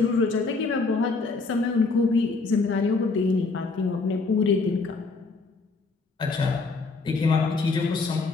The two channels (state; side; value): quieter; right; 4.0 dB